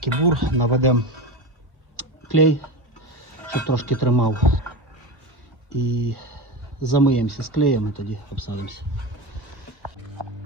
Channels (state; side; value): late; left; 1.5 ms